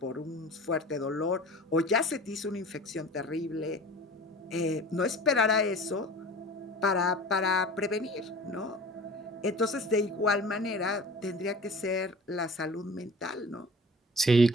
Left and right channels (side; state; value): both; normal; correlation 0.40